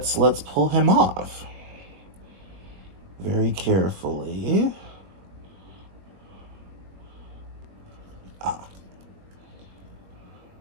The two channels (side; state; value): left; late; 21 ms